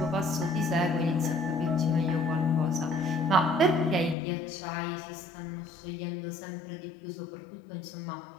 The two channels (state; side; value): drops out; right; at 4.2 s